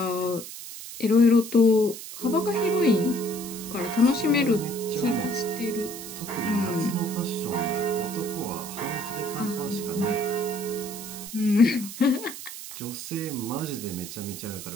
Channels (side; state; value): right; noise; hiss, 11 dB below the sound